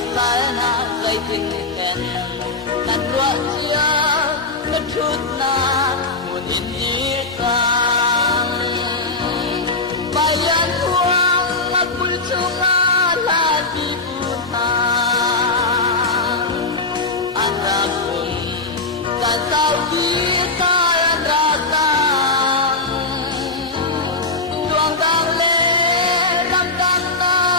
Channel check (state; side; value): quieter; right; 3.4 dB